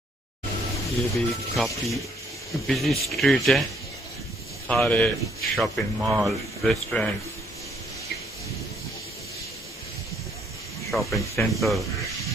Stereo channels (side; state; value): both; normal; correlation 0.67